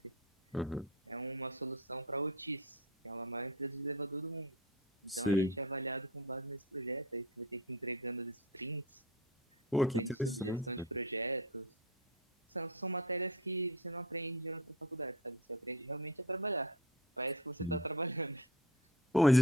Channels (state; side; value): normal; both; correlation 0.28